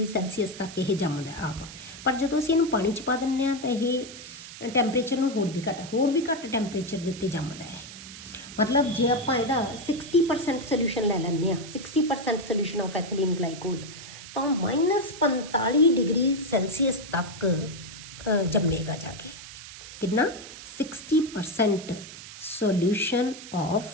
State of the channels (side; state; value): right; noise; hiss, 14 dB below the sound